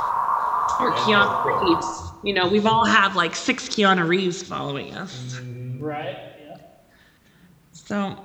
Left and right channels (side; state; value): both; identical; correlation 1.00